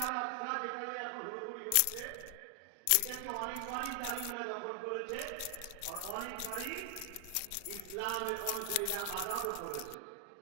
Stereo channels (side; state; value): both; different; correlation 0.00